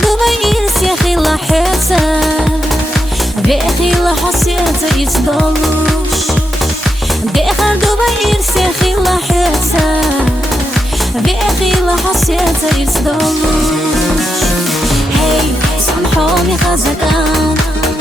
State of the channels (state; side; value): normal; both; correlation 0.85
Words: إرسي خير لحيتا بأخي لحسيتا يتدلوش داخل دوبا إرسي خير لحيتا بأخي لحسيتا يتدلوش هاي سامحوني خزقان